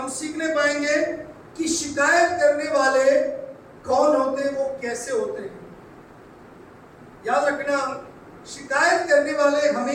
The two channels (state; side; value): identical; both; correlation 1.00